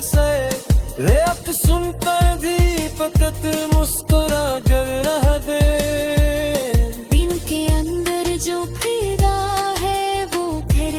से, रेत सुनकर भी फकत मुस्कुरा कर रह दे। दिल के अंदर जो फिदा है वो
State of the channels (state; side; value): identical; both; correlation 1.00